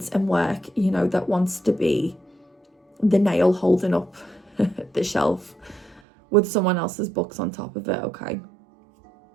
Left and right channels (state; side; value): drops out; left; at 6.0 s